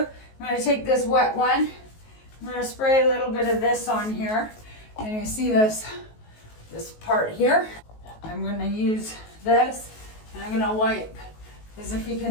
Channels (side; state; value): right; late; 19 ms